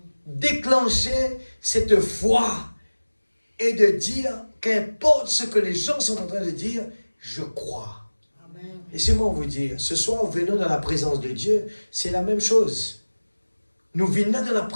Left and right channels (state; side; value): inverted; both; correlation -1.00